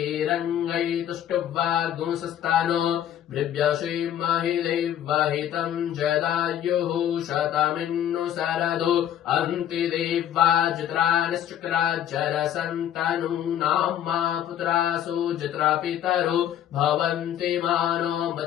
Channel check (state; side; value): quieter; right; 10.6 dB